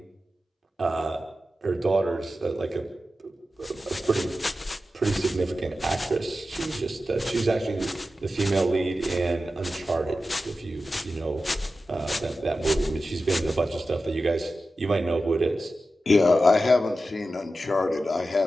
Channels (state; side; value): normal; both; correlation 0.93